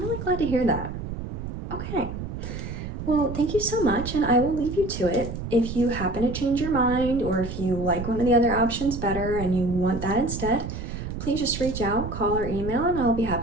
glad to hear that. Okay. Well, thank you so much, and I will leave you to it. If you happen to change your mind, or if you like one of the other options better and you want that instead, please just reach out, call or email, and I'll be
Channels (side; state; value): right; noise; rumble, 7 dB below the sound